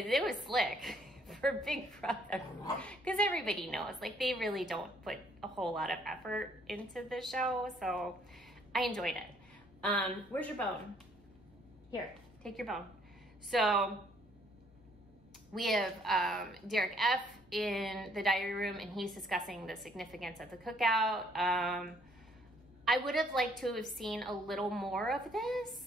was slick for Big Brother. Because everybody knows, like, they really don't put a whole lot of effort into the show. So I enjoyed it. Where's your bone? Here, take your bone. So we have Derek F. in the diary room, and he's discussing the significance of the cookout. I would have liked to have seen a little more of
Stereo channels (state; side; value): normal; both; correlation 0.64